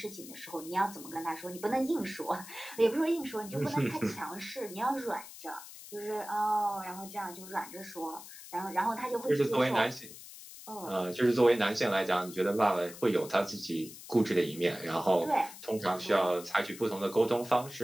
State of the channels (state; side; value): noise; left; hiss, 15 dB below the sound